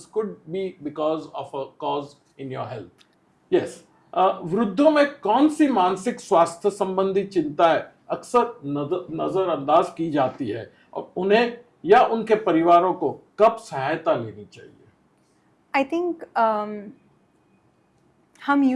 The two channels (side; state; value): both; identical; correlation 1.00